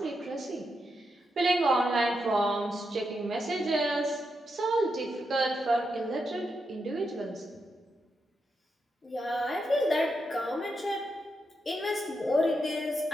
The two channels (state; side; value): normal; both; correlation 0.84